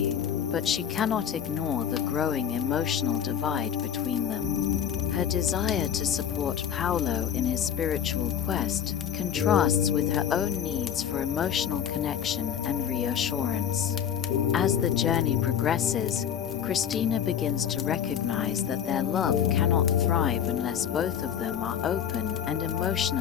but she cannot ignore the growing emotional divide between them. Her desire to support Paulo in his spiritual quest contrasts with her own needs for emotional connection and reassurance. As the journey progresses, Christina begins to recognize that their love cannot thrive unless both of them are open and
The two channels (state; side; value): quieter; right; 9.0 dB